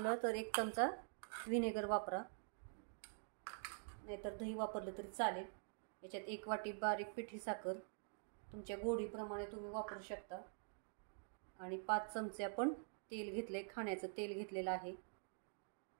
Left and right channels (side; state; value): left; silent; digital silence